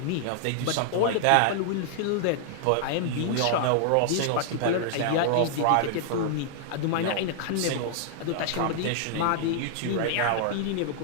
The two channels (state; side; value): different; both; correlation -0.01